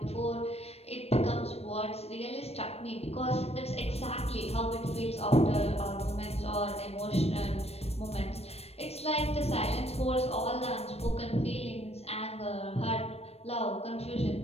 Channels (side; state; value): right; late; 0.30 ms